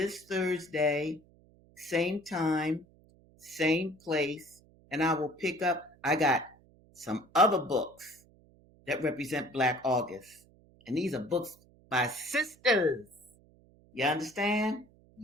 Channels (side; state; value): right; noise; hum, 28 dB below the sound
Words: Thursday, same time, same place, and I will pick up. I got some other books that represent Black August. And these are books by sisters. You understand?